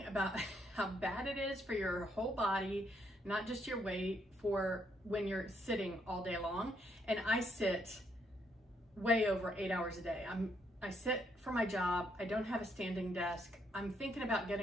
about how bad it is for your whole body, not just your weight, for when you're sitting all day long. And I sit way over 8 hours a day. I sit for my job. I don't have a standing desk. I'm thinking about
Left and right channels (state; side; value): normal; both; correlation 0.74